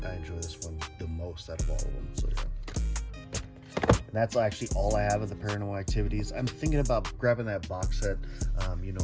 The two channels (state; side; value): identical; both; correlation 1.00